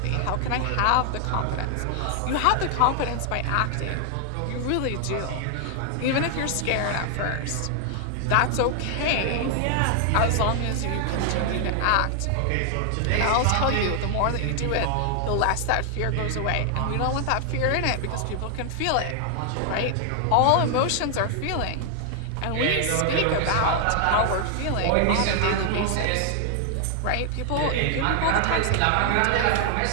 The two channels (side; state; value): both; different; correlation 0.00